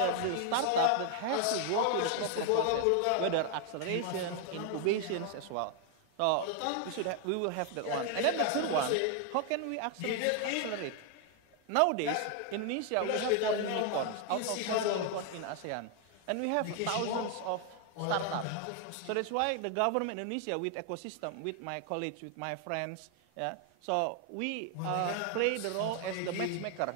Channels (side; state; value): both; different; correlation 0.00